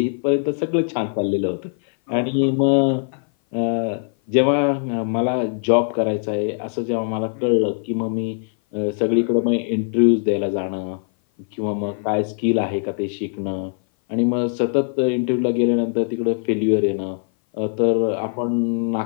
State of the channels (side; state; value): right; silent; 57 dB below the other